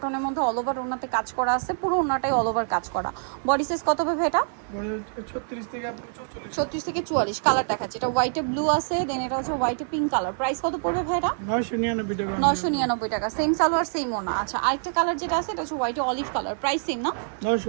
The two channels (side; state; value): left; silent; digital silence